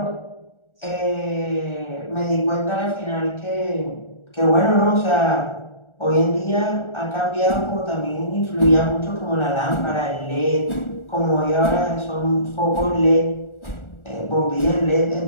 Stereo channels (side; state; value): right; late; 1.4 ms